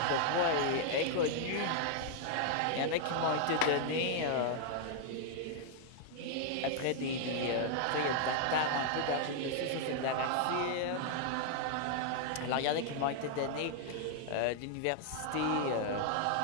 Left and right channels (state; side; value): different; both; correlation 0.00